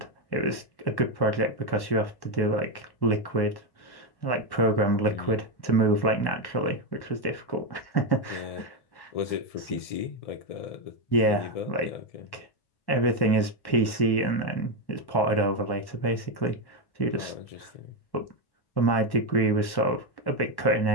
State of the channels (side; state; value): right; late; 1.1 ms